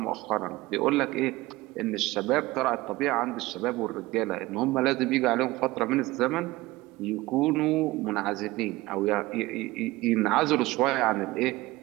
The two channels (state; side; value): quieter; left; 19.6 dB